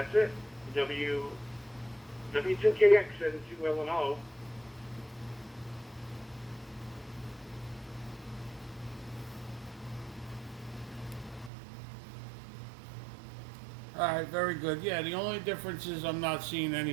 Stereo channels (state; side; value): drops out; left; at 11.5 s